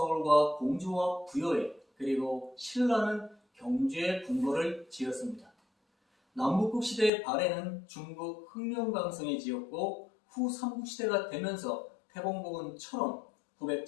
공주와 부여에, 그리고 신라는 경주에 궁궐을 지었습니다. 남북국 시대의 발해는 중국 흑룡강성에 지었고, 후 삼국시대가 되면서 태봉국은처럼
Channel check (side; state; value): right; drops out; at 7.1 s